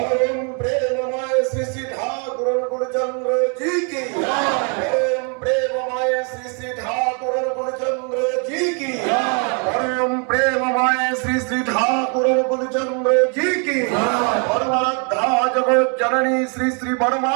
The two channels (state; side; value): quieter; left; 38.0 dB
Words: প্রেমময় শ্রী শ্রী ঠাকুর গুরুচন্দ্র জি কি জয়। পরম প্রেমময় শ্রী শ্রী ঠাকুর গুরুচন্দ্র জি কি জয়। পরম প্রেমময় শ্রী শ্রী ঠাকুর গুরুচন্দ্র জি কি জয়। পরমারাধ্যা জগৎ জননী শ্রী শ্রী বড়মা